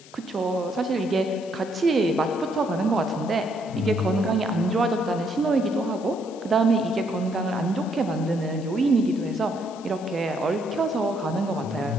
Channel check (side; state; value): left; noise; hiss, 22 dB below the sound